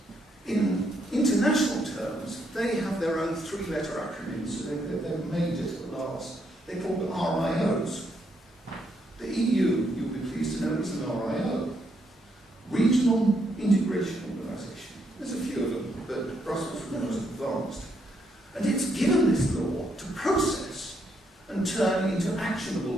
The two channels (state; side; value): normal; both; correlation 0.76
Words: In international terms, they have their own three-letter acronyms, so they've made it at last. They're called RIOs. The EU, you'll be pleased to know, is an RIO. Regional Integration Organisation. There's a few of them, but Brussels is the most advanced. And it's given this law to process and turn into actionable